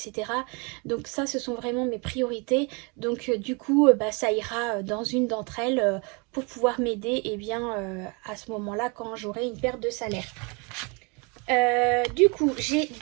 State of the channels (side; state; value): left; quieter; 31.6 dB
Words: Donc ça, ce sont vraiment mes priorités. Donc du coup, ça ira dans une d'entre elles pour pouvoir m'aider à ce moment-là quand j'aurai une perte de salaire. Du coup, j'ai